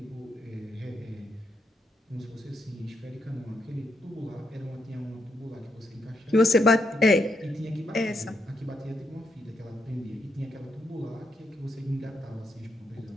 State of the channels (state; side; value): normal; both; correlation 0.79